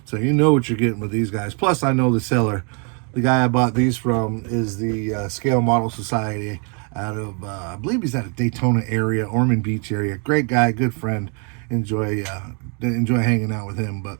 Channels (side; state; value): left; quieter; 37.1 dB